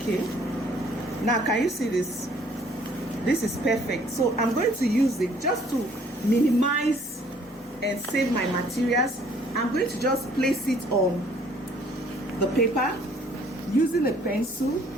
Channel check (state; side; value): normal; both; correlation 0.59